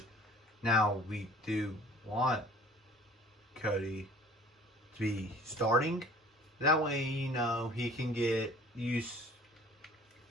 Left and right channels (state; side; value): normal; both; correlation 0.49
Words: Now, we do want Cody to be starting. That way, he can get used